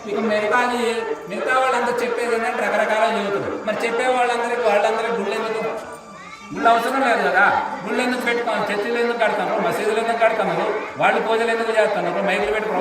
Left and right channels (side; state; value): both; identical; correlation 1.00